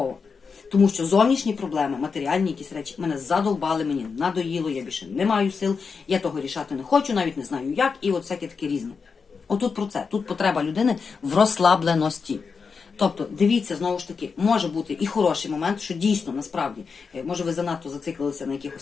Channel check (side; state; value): right; quieter; 5.3 dB